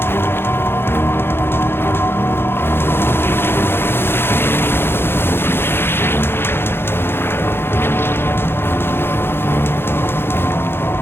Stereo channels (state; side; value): late; right; 0.11 ms